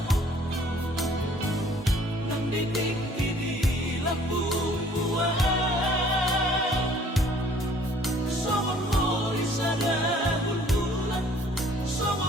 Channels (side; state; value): both; normal; correlation 0.56